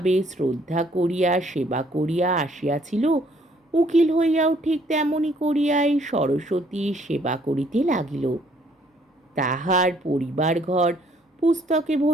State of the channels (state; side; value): normal; both; correlation 0.64